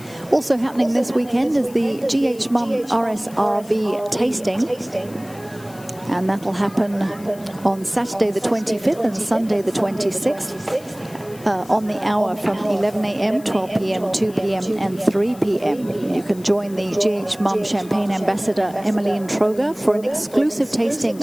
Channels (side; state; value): left; noise; hiss, 22 dB below the sound